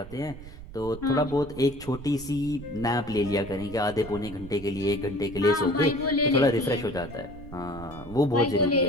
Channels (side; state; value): right; noise; rumble, 15 dB below the sound